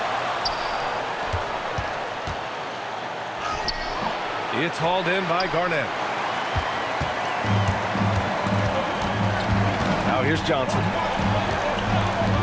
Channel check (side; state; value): both; identical; correlation 1.00